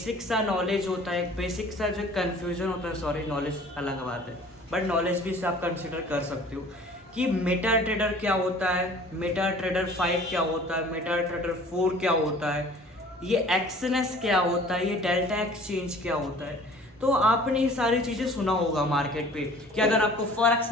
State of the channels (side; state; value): both; normal; correlation 0.49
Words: सा नॉलेज होता है, एक बेसिक सा जो कन्फ्यूजन होता है, सॉरी नॉलेज अलग बात है बट नॉलेज भी से आप कंसिडर कर सकते हो कि मेटा ट्रेडर क्या होता है, मेटा ट्रेडर 5 क्या होता है, मेटा ट्रेडर 4 क्या होता है, ये एक्सएनएस क्या होता है, ये डेल्टा एक्सचेंज क्या होता है। तो आपने ये सारी चीज़ें सुना होगा मार्केट पे कि अगर आपको फॉरेक्स